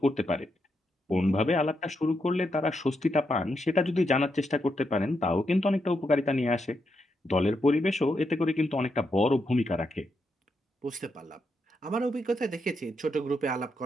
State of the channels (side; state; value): both; normal; correlation 0.82